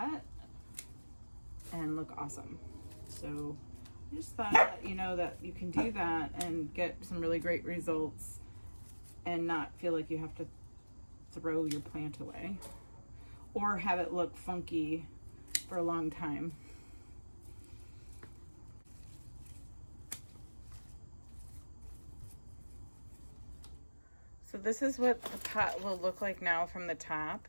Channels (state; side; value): inverted; both; correlation -1.00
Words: and look awesome. So I just thought I'd let you know that you can do that and get some really great results and not feel like you have to throw your plant away or have it look funky for a long time. So this is what the pot will look like now from the top.